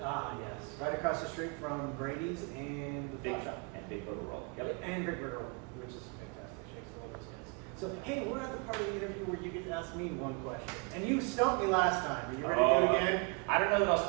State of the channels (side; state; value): left; quieter; 32.2 dB